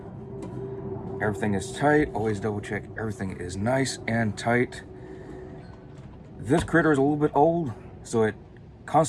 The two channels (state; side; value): identical; both; correlation 1.00